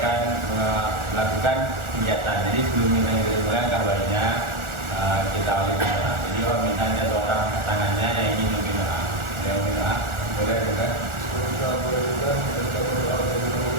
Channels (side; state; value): left; late; 1.4 ms